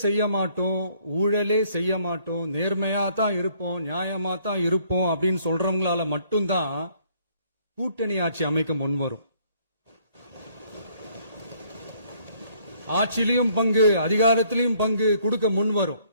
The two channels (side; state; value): both; inverted; correlation -0.63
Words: செய்ய மாட்டோம், ஊழலே செய்ய மாட்டோம், நேர்மையா தான் இருப்போம், நியாயமா தான் இருப்போம் அப்படின்னு சொல்றவங்களால மட்டும்தான் கூட்டணி ஆட்சி அமைக்க முன்வரும். ஆட்சியிலையும் பங்கு, அதிகாரத்திலையும் பங்கு கொடுக்க முன்வரும்.